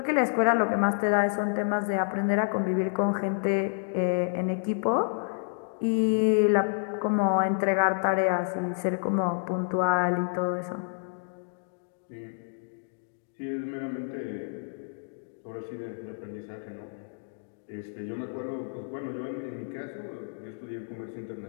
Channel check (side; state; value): right; silent; digital silence